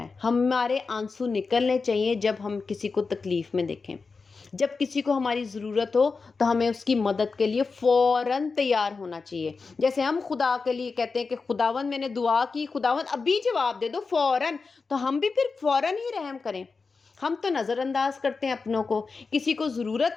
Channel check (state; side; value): quieter; right; 4.5 dB